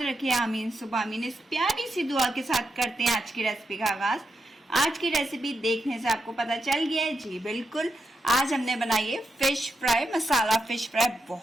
रखे, आमीन सुबह आमीन। इस प्यारी सी दुआ के साथ करते हैं आज की रेसिपी का आगाज। आज की रेसिपी देखने से आपको पता चल गया है, जी बिल्कुल। आज हमने बनाई है फिश फ्राई, मसाला फिश फ्राई।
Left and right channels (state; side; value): normal; both; correlation 0.85